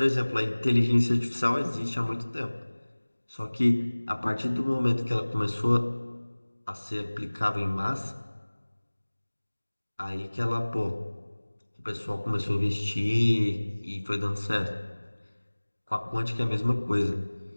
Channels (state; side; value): inverted; both; correlation -1.00